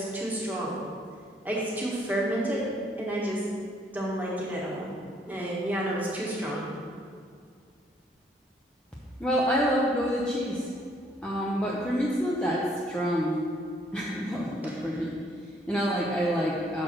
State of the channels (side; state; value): both; normal; correlation 0.66